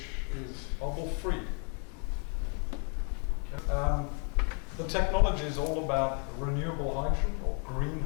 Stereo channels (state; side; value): quieter; right; 39.1 dB